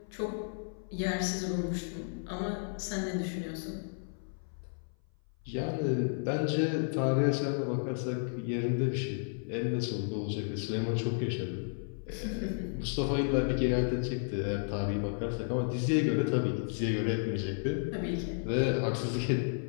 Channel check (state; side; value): silent; right; 56 dB below the other